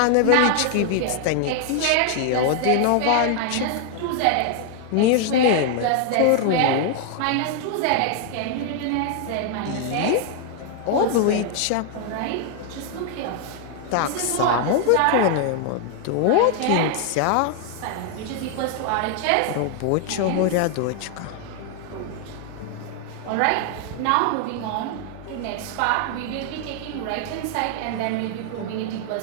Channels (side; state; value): both; different; correlation 0.00